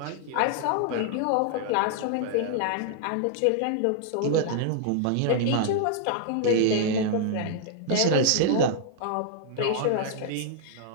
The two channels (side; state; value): both; different; correlation -0.01